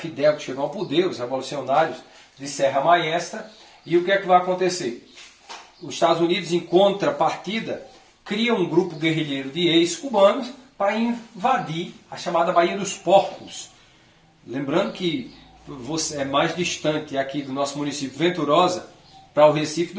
que chegou ao poder, os revolucionários de Serra Maestra, e o que é que vai acontecer? os Estados Unidos, em contrapartida, cria um grupo guerrilheiro de ex-cubanos para invadir a chamada Baía dos Porcos. Lembrando que você é mais distante aqui do nosso município Venturosa para o Recife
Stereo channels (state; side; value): identical; both; correlation 1.00